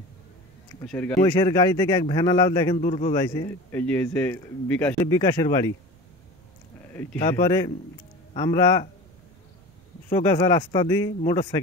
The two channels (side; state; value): right; noise; rumble, 29 dB below the sound